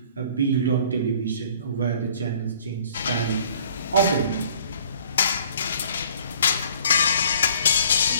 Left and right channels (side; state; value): both; inverted; correlation -0.55